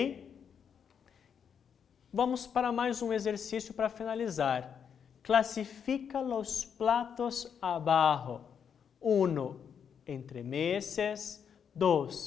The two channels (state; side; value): quieter; right; 7.4 dB